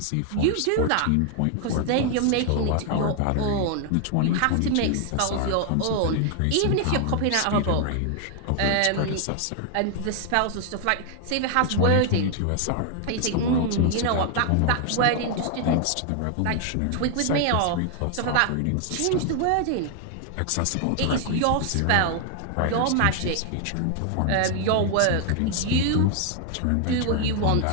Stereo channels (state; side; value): different; both; correlation 0.00